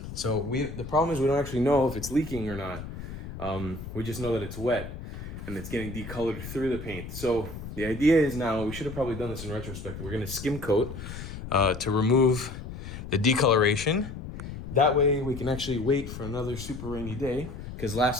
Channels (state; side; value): noise; left; rumble, 10 dB below the sound